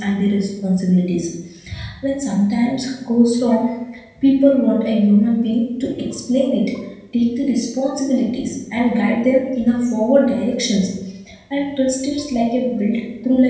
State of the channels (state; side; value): identical; both; correlation 1.00